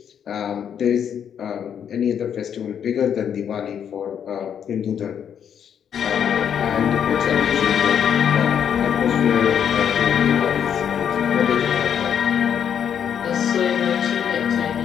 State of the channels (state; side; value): quieter; right; 8.5 dB